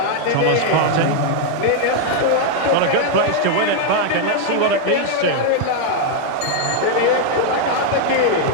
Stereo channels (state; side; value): different; both; correlation 0.00